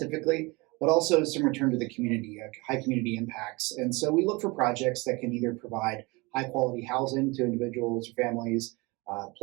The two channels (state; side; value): quieter; left; 25.3 dB